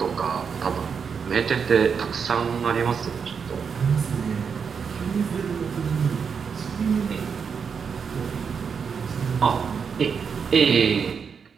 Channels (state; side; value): quieter; left; 6.3 dB